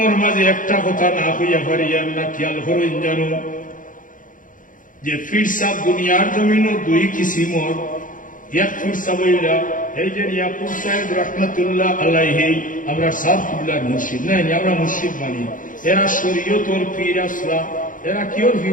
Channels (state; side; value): late; right; 0.39 ms